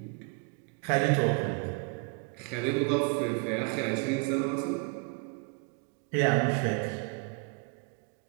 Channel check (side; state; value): left; quieter; 36.1 dB